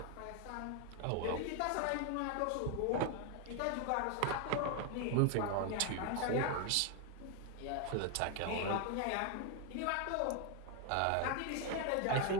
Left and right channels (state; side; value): different; both; correlation 0.01